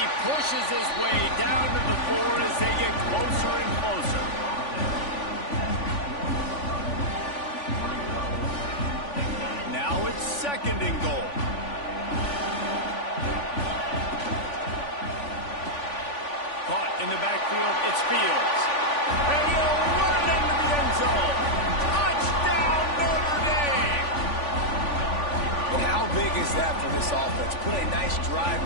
pushes his way down to the 4 as they get closer and closer. Now it's 2nd and goal. Caught in the backfield, it's Fields. And he'll run it into the end zone. Touchdown, Notre Dame! And how big is that for this offense? Put a nice drive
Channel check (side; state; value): right; late; 3.5 ms